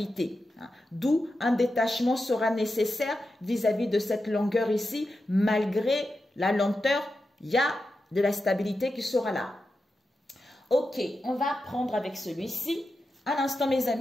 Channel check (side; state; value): both; normal; correlation 0.90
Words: D'où un détachement sera nécessaire vis-à-vis de cette longueur ici. Malgré la lenteur, il y a de la stabilité qui sera là. Ok, on va prendre avec celui-ci. À l'instant, mes